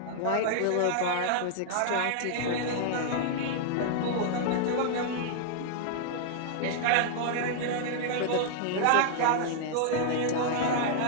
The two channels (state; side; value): different; both; correlation -0.01